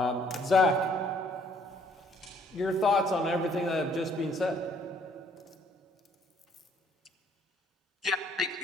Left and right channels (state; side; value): normal; both; correlation 0.62